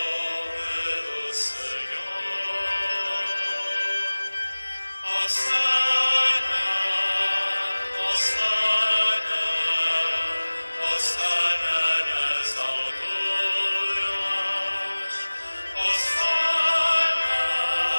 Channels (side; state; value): both; inverted; correlation -1.00